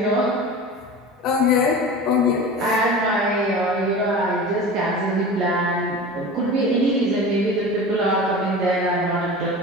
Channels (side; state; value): both; normal; correlation 0.34